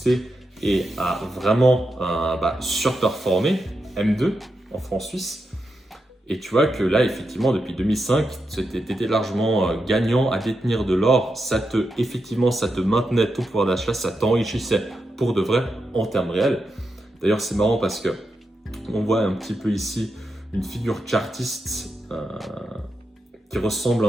et a vraiment surperformé M2 en francs suisses. Et tu vois que là, effectivement, depuis 2005, tu étais largement gagnant à détenir de l'or. Ça te maintenait ton pouvoir d'achat, ça t'enrichissait pour de vrai en termes réels. D'ailleurs, c'est marrant parce que on voit un petit peu ici une figure chartiste qui ressemble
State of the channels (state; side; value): normal; both; correlation 0.86